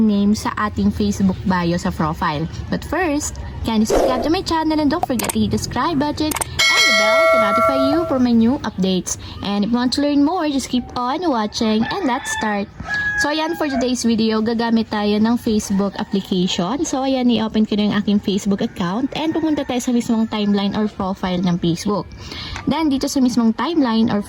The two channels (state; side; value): identical; both; correlation 1.00